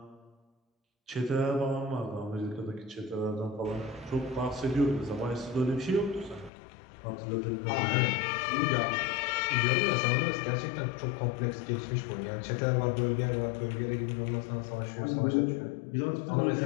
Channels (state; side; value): drops out; right; at 6.5 s